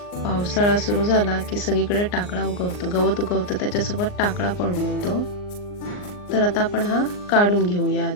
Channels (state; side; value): late; right; 39 ms